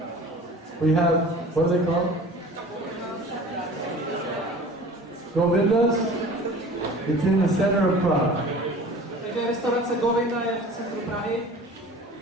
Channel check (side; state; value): both; normal; correlation 0.43